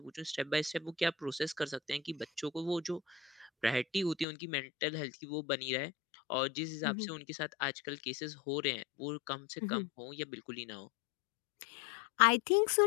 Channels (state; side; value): drops out; right; at 4.2 s